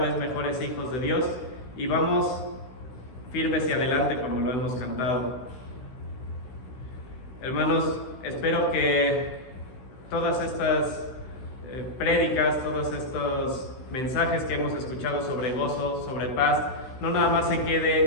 mejores hijos de Dios y vamos firmes y adelante como lo hemos cantado. Hermanos, espero que todas estas prédicas, todos estos mensajes que hemos escuchado sobre gozo, sobre paz, no nada más se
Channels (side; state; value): right; late; 16 ms